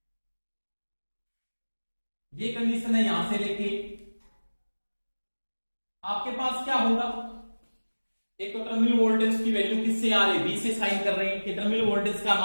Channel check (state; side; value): inverted; both; correlation -1.00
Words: ये कंडीशन है, यहां से लेके आपके पास क्या होगा, एक तो टर्मिनल वोल्टेज की वैल्यू किससे आ रही है, वी से साइन कर रहे हैं, कि टर्मिनल वोल्टेज का